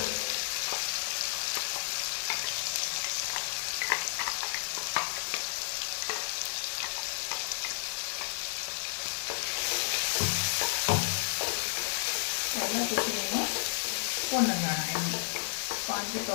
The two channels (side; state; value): right; silent; digital silence